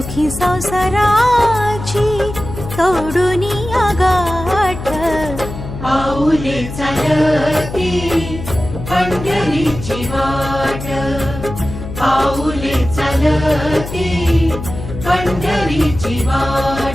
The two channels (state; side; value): noise; left; hum, 9 dB below the sound